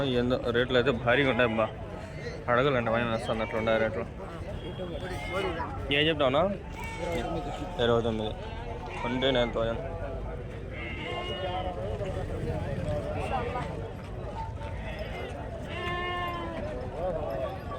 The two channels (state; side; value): identical; both; correlation 1.00